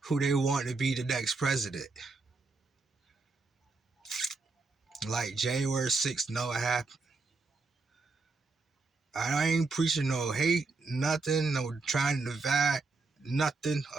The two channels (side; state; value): left; quieter; 3.8 dB